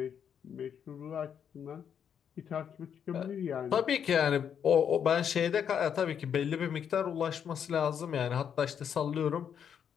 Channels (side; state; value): right; quieter; 8.1 dB